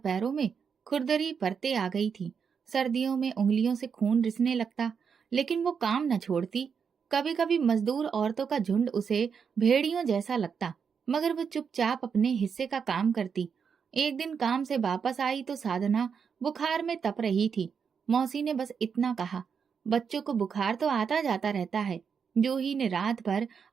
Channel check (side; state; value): left; quieter; 6.5 dB